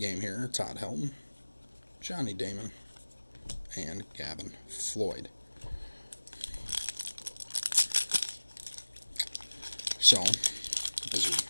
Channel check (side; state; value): both; inverted; correlation -1.00